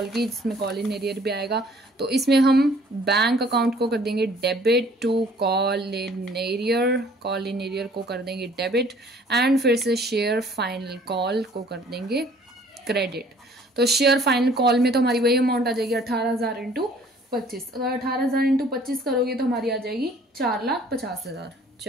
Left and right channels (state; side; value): normal; both; correlation 0.56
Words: की, जिसमें कॉल इन एरियर भी आएगा। तो इसमें हम बैंक अकाउंट को कर देंगे debit to call in arrear को कर देंगे डेबिट, एंड फिर से शेयर फाइनल कॉल को कर देंगे क्रेडिट। तो शेयर फाइनल कॉल में तो हमारी वही अमाउंट आ जाएगी 18,000 इंटू 25। अगर 18,000 इंटू 25 करोगे तो हमारी आ जाएगी 4,50,000,